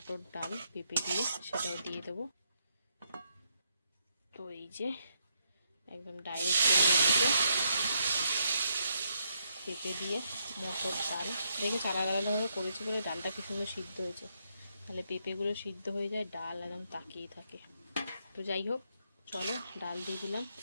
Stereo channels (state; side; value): inverted; both; correlation -0.77